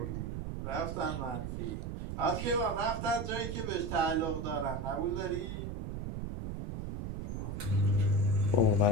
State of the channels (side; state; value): right; noise; rumble, 5 dB below the sound